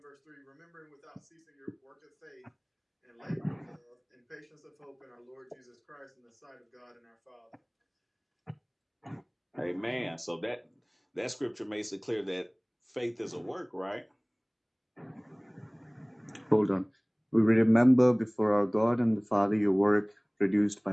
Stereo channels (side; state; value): both; identical; correlation 1.00